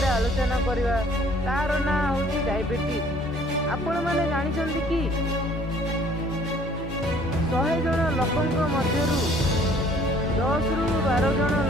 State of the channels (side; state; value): both; normal; correlation 0.57